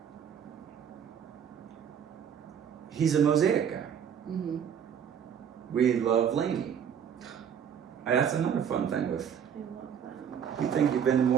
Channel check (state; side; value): quieter; left; 8.1 dB